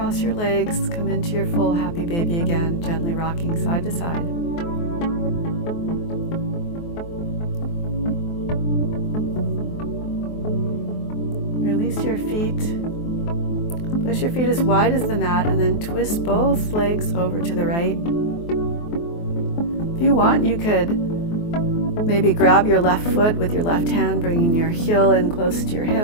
your legs, come into your full happy baby again, gently rocking side to side. Release your feet. Place your feet as wide as the mat and then twist both legs over to the right. If you want, you could maybe grab your left foot with your left hand, bringing your heel in close to your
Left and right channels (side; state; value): right; late; 24 ms